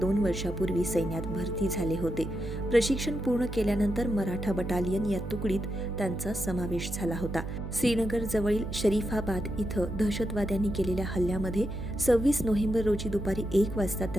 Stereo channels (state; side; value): noise; right; hum, 7 dB below the sound